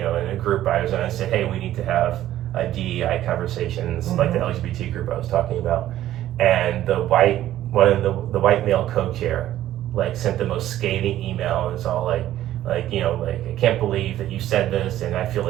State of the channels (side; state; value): left; quieter; 13.1 dB